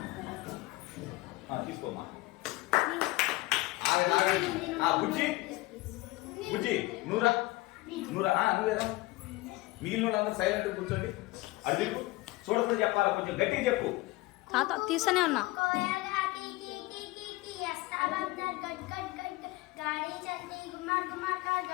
తీసుకోమ్మా బుజ్జి బుజ్జి నూరా నూరా నువ్వేదా మిగిలిన వాళ్ళందరూ సైలెంట్ కూర్చోండి. అడుగు చూడకుండా చెప్పాలా, కొంచెం గట్టిగా చెప్పు. తాత తీస్తూనే ఉన్నా.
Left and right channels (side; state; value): right; quieter; 20.6 dB